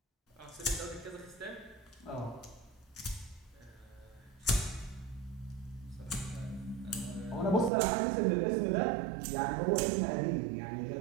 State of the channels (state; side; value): drops out; left; at 7.7 s